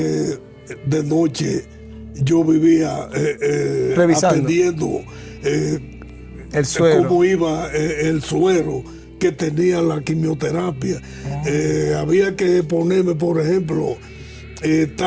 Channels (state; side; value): identical; both; correlation 1.00